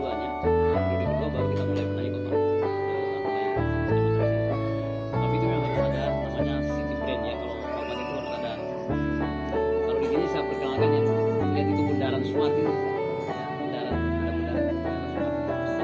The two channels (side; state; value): both; identical; correlation 1.00